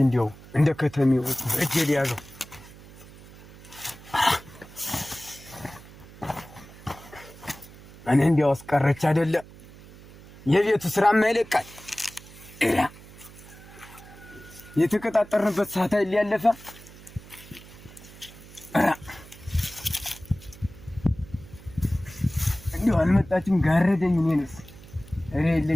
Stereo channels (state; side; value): noise; right; hum, 19 dB below the sound